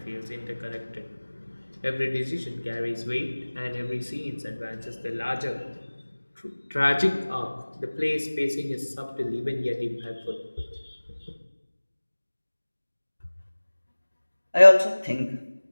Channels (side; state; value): both; inverted; correlation -1.00